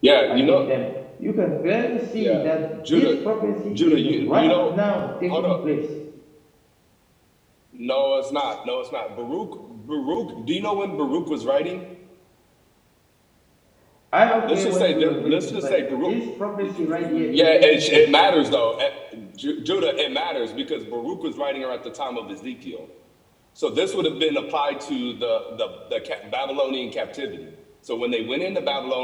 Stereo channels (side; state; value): both; identical; correlation 1.00